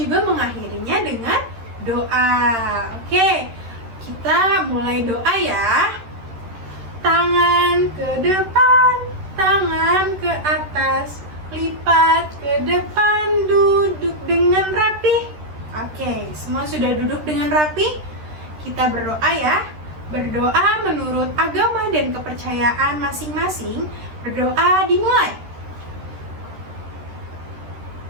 mengakhirinya dengan doa. Oke, kita mulai doa ya. Tangan ke depan, tangan ke atas, lipat ke depan, duduk dengan rapi. Oke, semua sudah duduk dengan rapi? Kita berdoa ya. Berdoa menurut agama dan kepercayaan masing-masing. Berdoa dimulai.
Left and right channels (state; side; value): late; left; 13 ms